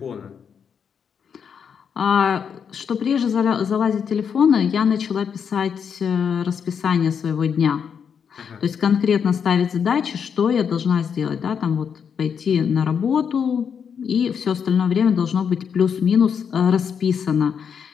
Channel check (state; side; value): quieter; right; 7.1 dB